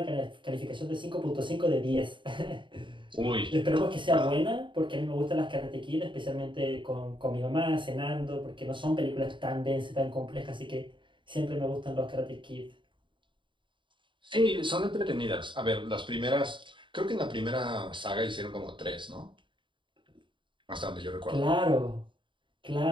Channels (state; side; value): late; left; 0.24 ms